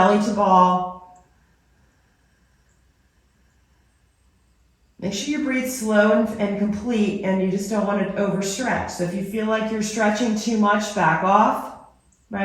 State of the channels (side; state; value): both; identical; correlation 1.00